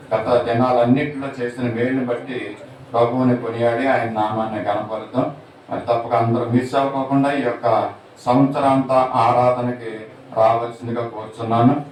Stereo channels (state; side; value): identical; both; correlation 1.00